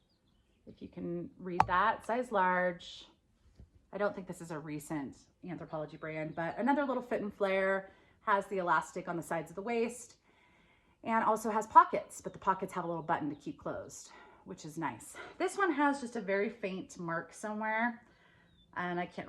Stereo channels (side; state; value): both; identical; correlation 1.00